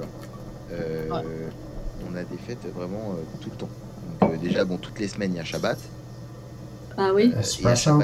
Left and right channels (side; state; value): both; identical; correlation 1.00